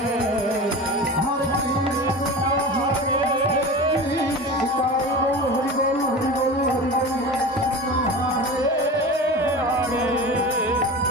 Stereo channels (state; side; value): normal; both; correlation 0.31